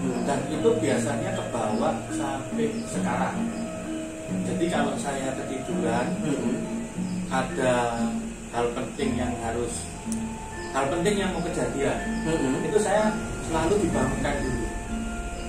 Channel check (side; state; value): both; identical; correlation 1.00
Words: Dan itu biasanya kebawa sampai sekarang. Jadi kalau saya ketiduran ada hal penting yang mau kejadian, itu saya selalu dibangunkan dulu.